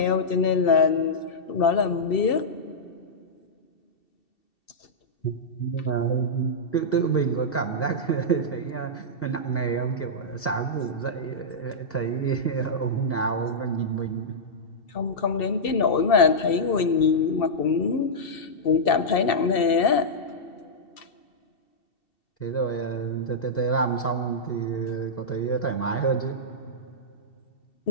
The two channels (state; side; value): late; right; 2.7 ms